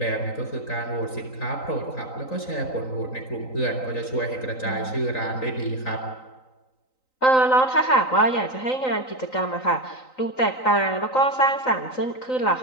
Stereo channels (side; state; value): right; late; 3.9 ms